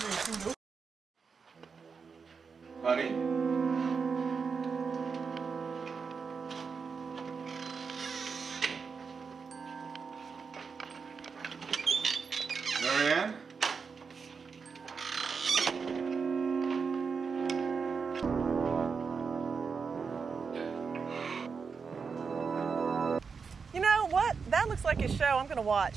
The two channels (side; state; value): left; quieter; 5.5 dB